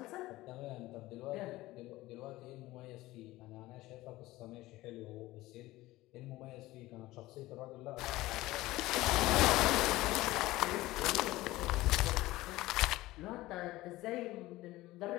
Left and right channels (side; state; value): right; quieter; 18.0 dB